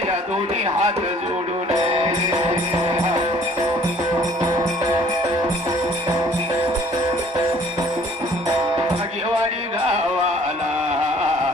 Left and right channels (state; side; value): normal; both; correlation 0.56